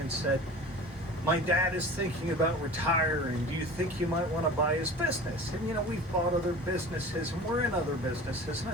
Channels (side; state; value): both; normal; correlation 0.38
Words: said, "My dad is thinking about retiring. Do you think you might want to buy his business?" And you know, we've bought other businesses and we're in other businesses. And I